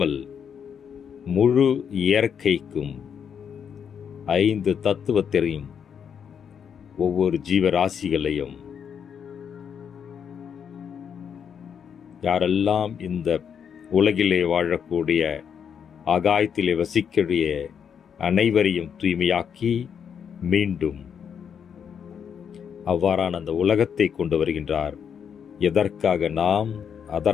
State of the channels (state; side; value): quieter; right; 7.6 dB